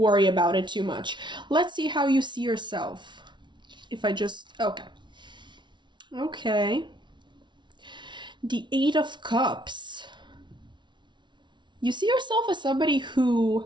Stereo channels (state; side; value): late; left; 0.23 ms